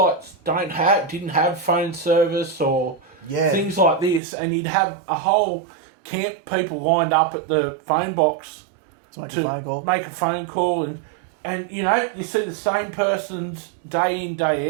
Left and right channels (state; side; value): drops out; left; at 4.2 s